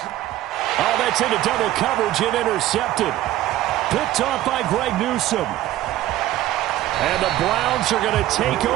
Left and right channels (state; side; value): quieter; left; 14.4 dB